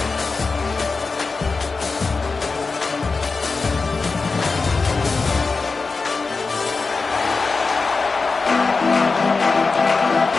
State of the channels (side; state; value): right; quieter; 4.2 dB